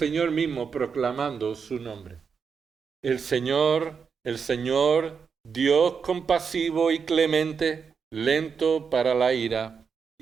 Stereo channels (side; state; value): left; quieter; 6.1 dB